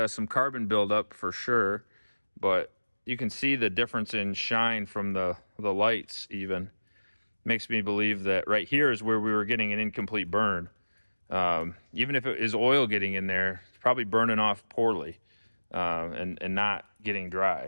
some carbon buildup for sure, but you can see the difference in shine from the lights even. Makes me believe that right here is where we were getting an incomplete burn. Even if it is oil getting in there, it's probably burning off poorly and not getting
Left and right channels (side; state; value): both; inverted; correlation -1.00